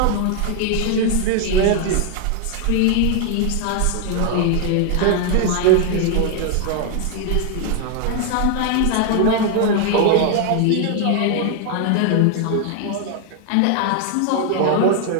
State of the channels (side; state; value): both; different; correlation 0.00